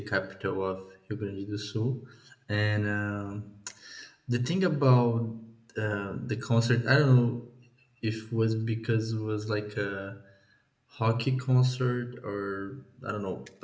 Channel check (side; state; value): both; identical; correlation 1.00